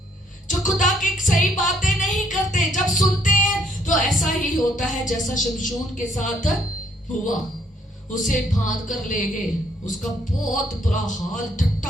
जो खुदा की सही बातें नहीं करते, जब सुनते हैं तो ऐसा ही होता है जैसा शमशून के साथ हुआ। उसे बांध कर ले गए, उसका बहुत बुरा हाल,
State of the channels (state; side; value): normal; both; correlation 0.66